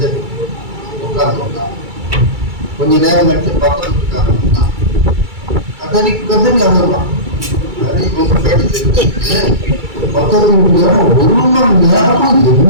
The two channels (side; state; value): left; late; 2.3 ms